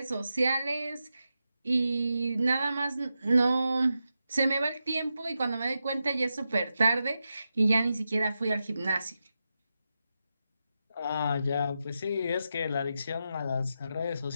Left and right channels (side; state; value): both; inverted; correlation -0.89